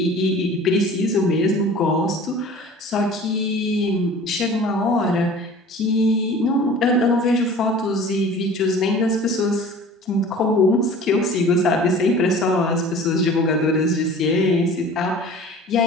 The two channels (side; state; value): both; normal; correlation 0.44